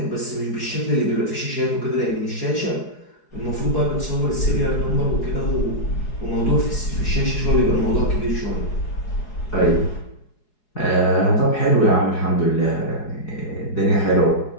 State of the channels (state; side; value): late; right; 4.8 ms